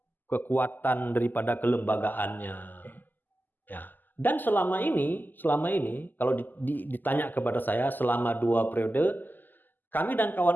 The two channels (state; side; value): late; right; 0.087 ms